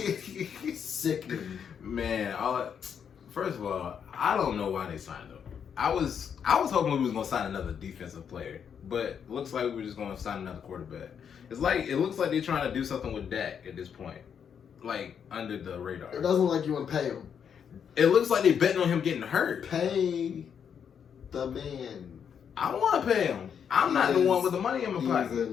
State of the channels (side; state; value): right; quieter; 7.6 dB